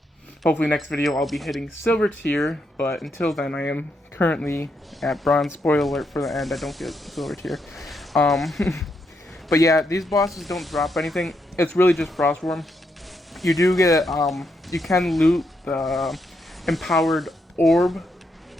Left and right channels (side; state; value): both; normal; correlation 0.80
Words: next video I'll be hitting silver tier, but until then I am currently at bronze. Spoiler alert for the end, I don't get silver tier. But yeah, these bosses don't drop anything. It's really just Frostworm. You do get, you can loot the empowered orb